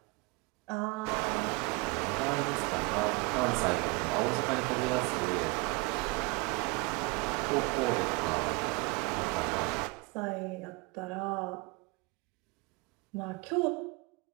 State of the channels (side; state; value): left; quieter; 28.0 dB